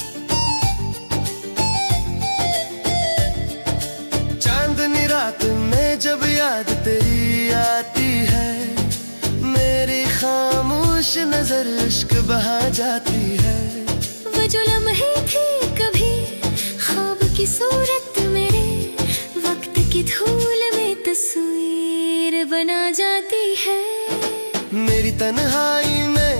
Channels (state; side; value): inverted; both; correlation -1.00